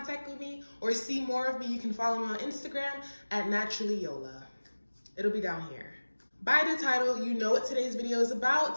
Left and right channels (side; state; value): both; inverted; correlation -1.00